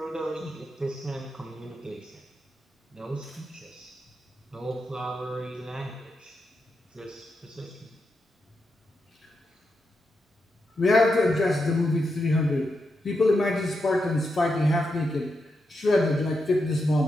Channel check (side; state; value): both; normal; correlation 0.85